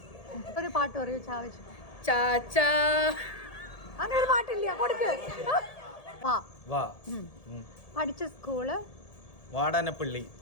ഒരു പാട്ട് പറയൂ. ചാവച്ചു ചാച്ചാ. അങ്ങനെ ഒരു പാട്ടില്ല. കൊടുക്ക്. പഠിച്ച സ്കൂള് വാടാനപ്പള്ളി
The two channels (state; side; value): late; right; 1.7 ms